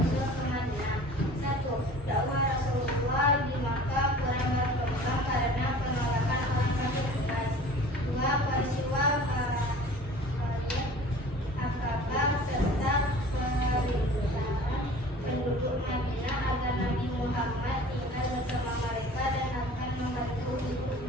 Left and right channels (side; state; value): both; normal; correlation 0.44